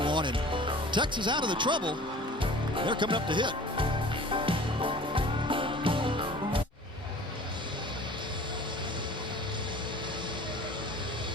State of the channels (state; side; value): normal; both; correlation 0.44